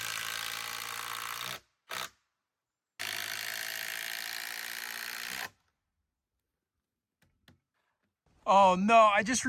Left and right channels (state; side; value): identical; both; correlation 1.00